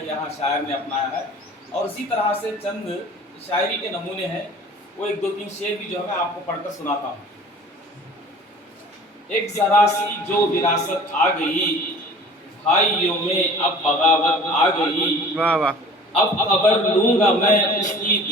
یہاں شاعر نے اپنایا ہے. اور اسی طرح سے چند شاعری کے نمونے ہیں، وہ ایک دو تین شعر بھی جو ہے میں آپ کو پڑھ کر سناتا ہوں. ایک ذرا سی جو وراثت آ گئی، بھائیوں میں اب بغاوت آ گئی. واہ واہ. اب خبر لوں گا میں اس کی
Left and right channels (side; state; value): both; normal; correlation 0.45